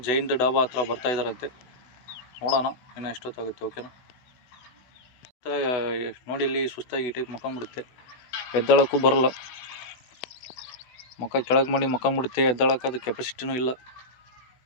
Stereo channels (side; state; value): right; late; 16 ms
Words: ಜೈನ್ ಡಾಬಾ ಹತ್ರ ಬರ್ತಾಯಿದ್ದಾರಂತೆ. ನೋಡೋಣ ಇನ್ನು ಎಷ್ಟೊತ್ತಾಗುತ್ತೆ. ಓಕೆನಾ? ನೋಡಿ ಇಲ್ಲಿ ಸುಸ್ತಾಗಿ ಈ ಟೈಪ್ ಮಕ್ಕೊಂಬಿಡುತ್ತೆ, ಎದ್ದಳಕ್ಕೂ ಬರಲ್ಲ. ಮುಖ ಕೆಳಗೆ ಮಾಡಿ ಮಕ್ಕೊಂಬಿಡುತ್ತೆ, ಎದ್ದಳಕ್ಕೆ ಅದು ಕೆಪಾಸಿಟಿನೂ ಇಲ್ಲ.